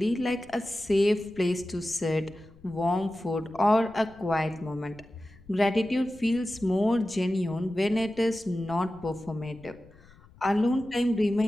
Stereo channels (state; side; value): noise; left; rumble, 24 dB below the sound